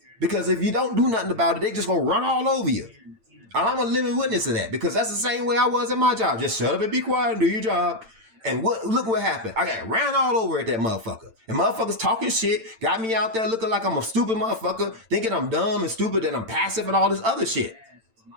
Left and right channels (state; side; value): late; left; 8.9 ms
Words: Because if you don't do nothing about it, they just gonna run all over you. And I'm a living witness of that because that's the same way I was at my job. Just shut up and be quiet and do your job. And look what happened. I got ran all over at that motherfucker. And motherfuckers talking shit, got me out there looking like I'm a stupid motherfucker, thinking I'm dumb and stupid and I'm passive and all this other shit.